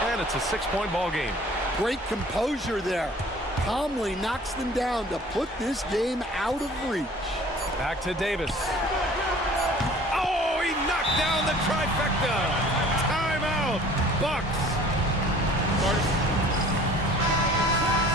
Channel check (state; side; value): normal; both; correlation 0.50